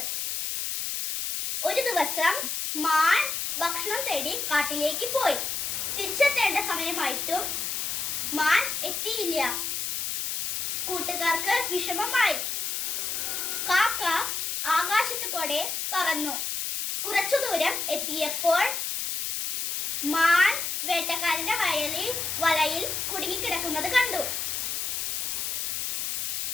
ഒരു ദിവസം മാൻ ഭക്ഷണം തേടി കാട്ടിലേക്ക് പോയി. തിരിച്ചെത്തേണ്ട സമയമായിട്ടും മാൻ എത്തിയില്ല. കൂട്ടുകാർക്ക് വിഷമമായി. കാക്ക ആകാശത്ത് കൂടെ പറന്നു. കുറച്ചു ദൂരം എത്തിയപ്പോൾ മാൻ വേട്ടക്കാരന്റെ വലയിൽ കുടുങ്ങിക്കിടക്കുന്നത് കണ്ടു.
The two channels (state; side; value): noise; left; hiss, 1 dB below the sound